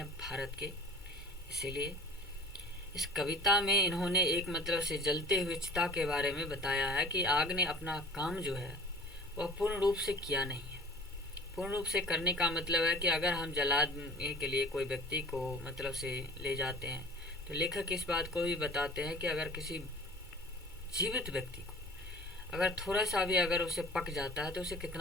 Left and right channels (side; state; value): both; normal; correlation 0.44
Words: भारत के। इसीलिए इस कविता में इन्होंने एक मतलब से जलते हुए चिता के बारे में बताया है कि आग ने अपना काम जो है वह पूर्ण रूप से किया नहीं है। पूर्ण रूप से करने का मतलब है कि अगर हम जलाने के लिए कोई व्यक्ति को मतलब से ले जाते हैं, तो लेखक इस बात को भी बताते हैं कि अगर किसी जीवित व्यक्ति को अगर थोड़ा सा भी अगर उसे पक जाता है तो उसे